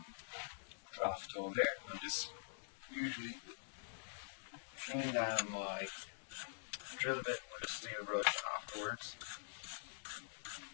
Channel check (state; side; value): silent; right; digital silence